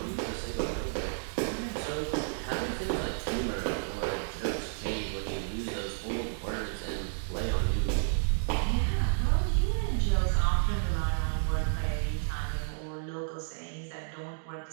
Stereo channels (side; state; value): left; silent; digital silence